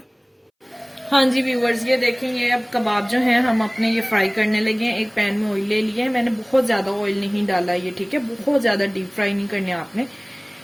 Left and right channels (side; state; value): both; identical; correlation 1.00